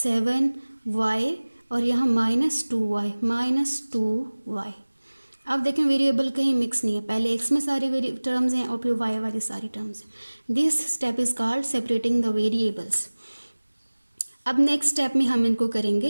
और यहाँ -2y। अब देखें वेरिएबल कहीं मिक्स नहीं है, पहले x में सारी टर्म्स हैं और फिर y वाली सारी टर्म्स हैं। This step is called separating the variables. अब नेक्स्ट स्टेप में हम इनको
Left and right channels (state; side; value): inverted; both; correlation -1.00